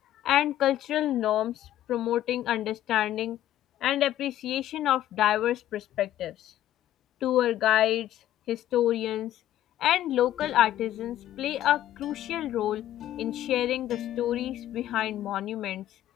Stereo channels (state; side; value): quieter; right; 12.8 dB